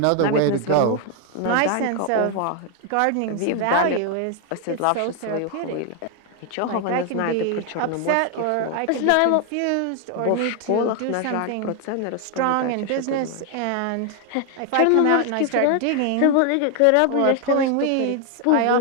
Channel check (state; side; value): different; both; correlation 0.01